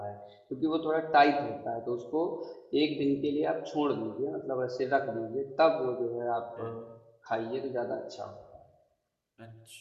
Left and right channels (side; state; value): both; identical; correlation 1.00